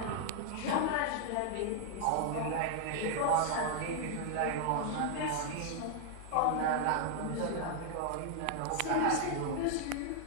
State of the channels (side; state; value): both; different; correlation 0.00